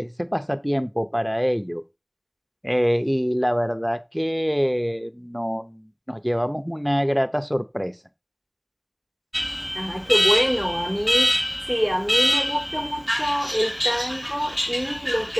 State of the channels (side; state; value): both; identical; correlation 1.00